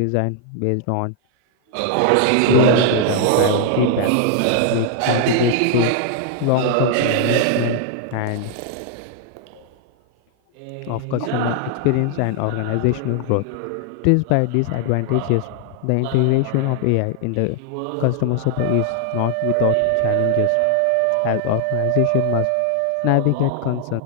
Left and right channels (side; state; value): both; different; correlation 0.00